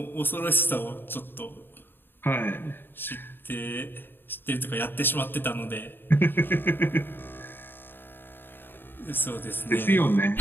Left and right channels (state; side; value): late; right; 0.098 ms